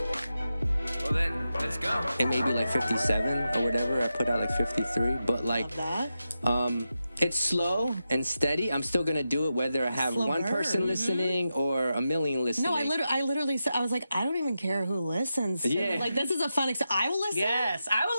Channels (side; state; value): both; inverted; correlation -0.89